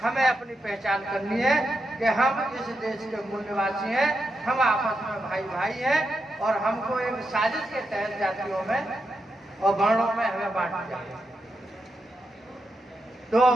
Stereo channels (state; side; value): normal; both; correlation 0.85